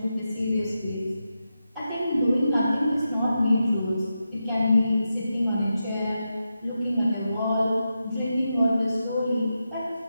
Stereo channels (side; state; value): both; inverted; correlation -0.88